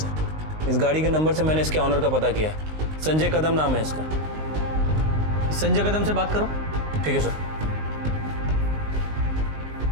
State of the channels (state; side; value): late; left; 19 ms